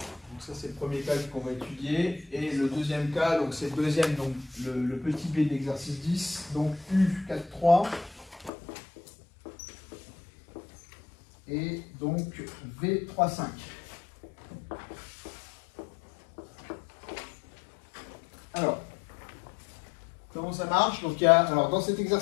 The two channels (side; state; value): right; drops out; at 8.5 s